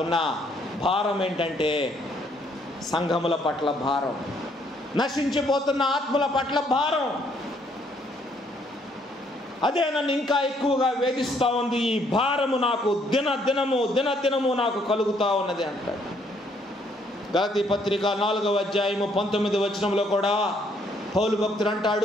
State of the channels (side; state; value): both; normal; correlation 0.68